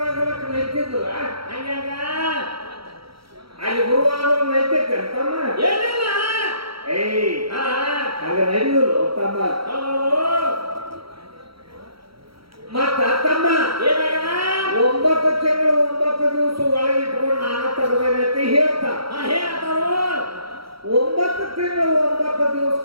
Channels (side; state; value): left; late; 0.75 ms